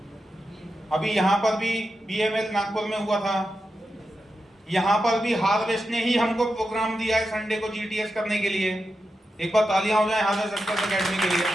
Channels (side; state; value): both; normal; correlation 0.89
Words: अभी यहां पर भी BML नागपुर में हुआ था, यहां पर भी हार्वेस्ट ने ही हमको प्रोग्राम दिया है संडे को GTS करने के लिए। एक बार तालियां हो जाए हार्वेस्ट सक्सेस एकेडमी के लिए।